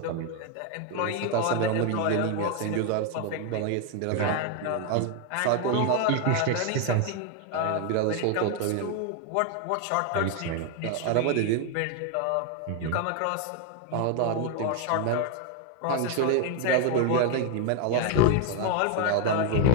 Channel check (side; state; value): both; different; correlation 0.01